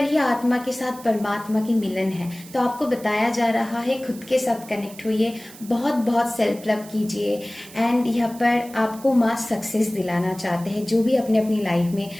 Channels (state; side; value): noise; right; hiss, 19 dB below the sound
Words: ही आत्मा के साथ परमात्मा की मिलन है, तो आपको बताया जा रहा है खुद के साथ कनेक्ट होइए, बहुत बहुत सेल्फ लव कीजिए। एंड यहाँ पर आपको माँ सक्सेस दिलाना चाहते हैं, जो भी अपने अपनी लाइफ में